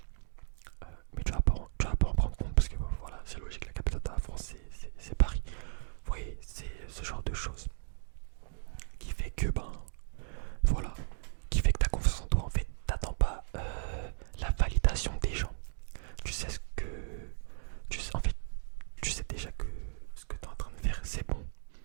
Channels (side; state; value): left; silent; digital silence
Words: mais tu vas pas en prendre compte parce que voilà, c'est logique, la capitale de la France c'est Paris. Vous voyez, c'est ce genre de choses qui fait que voilà, qui fait que t'as confiance en toi. En fait, t'attends pas la validation des gens. Tu sais ce que en fait, tu sais déjà que ce que t'es en train de faire c'est bon.